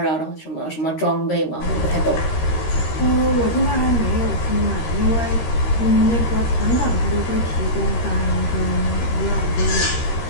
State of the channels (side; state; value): right; late; 13 ms